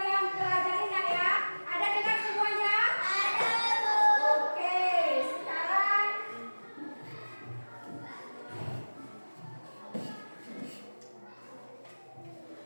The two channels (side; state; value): both; inverted; correlation -1.00